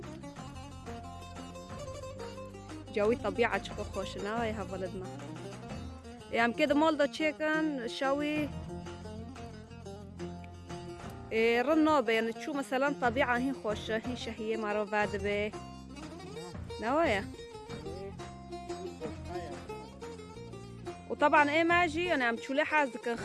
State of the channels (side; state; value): both; identical; correlation 1.00